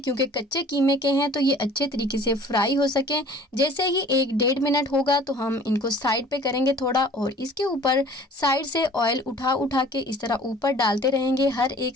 कच्चे कीमे के हैं, तो ये अच्छे तरीके से फ्राई हो सकें। जैसे ही 1-1.5 मिनट होगा तो हम इनको साइड पे करेंगे थोड़ा, और इसके ऊपर साइड से ऑयल उठा उठा के इस तरह ऊपर डालते रहेंगे हर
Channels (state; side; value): normal; both; correlation 0.49